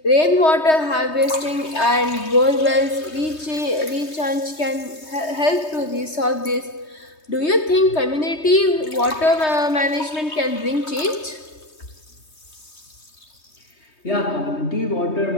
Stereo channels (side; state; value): right; late; 3.2 ms